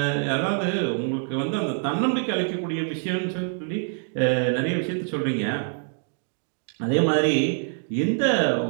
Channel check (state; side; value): silent; left; 62 dB below the other